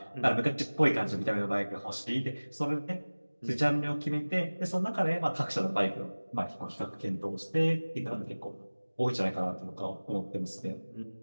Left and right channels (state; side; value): inverted; both; correlation -1.00